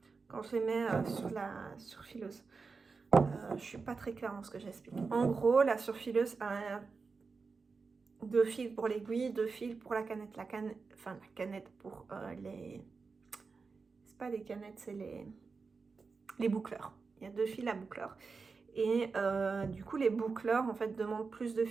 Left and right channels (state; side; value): quieter; left; 4.7 dB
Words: quand je les mets sur la surfileuse. Je suis pas très claire dans ce que j'explique. En gros, la surfileuse a 2 fils pour l'aiguille, 2 fils pour la canette. La canette pour les... C'est pas les canettes, c'est les boucleurs. Il y a 2 fils à boucleurs. Et du coup, les boucleurs, en fait, demandent plus de